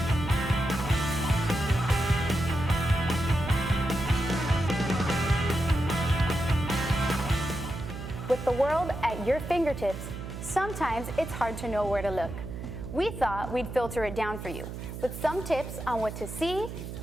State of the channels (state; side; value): noise; right; hum, 8 dB below the sound